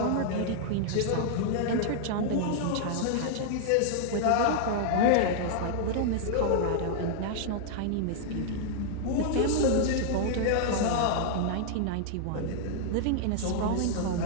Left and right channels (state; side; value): different; both; correlation -0.01